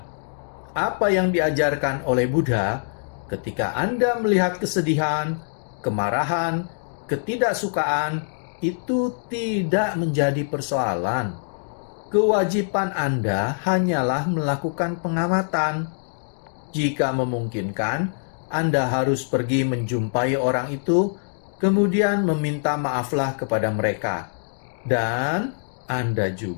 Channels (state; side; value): silent; right; digital silence